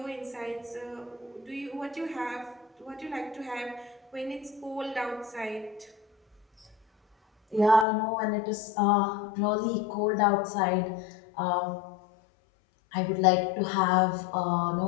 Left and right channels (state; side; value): drops out; right; at 7.9 s